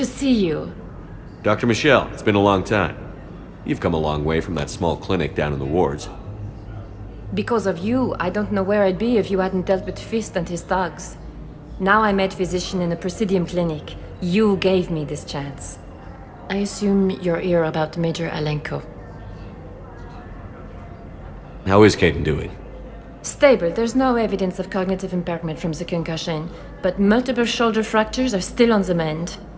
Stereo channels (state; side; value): identical; both; correlation 1.00